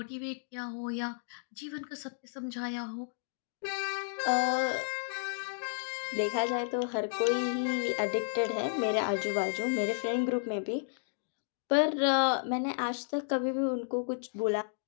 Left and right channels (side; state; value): right; silent; digital silence